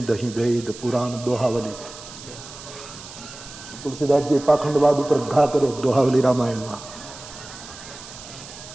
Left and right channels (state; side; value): noise; right; hiss, 15 dB below the sound